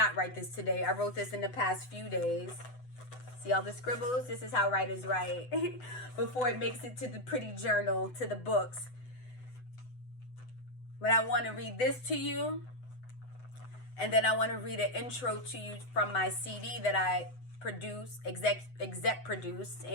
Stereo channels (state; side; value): late; right; 8.0 ms